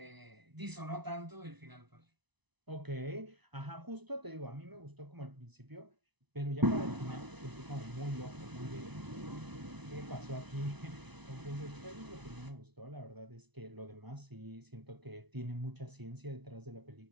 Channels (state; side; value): late; left; 1.0 ms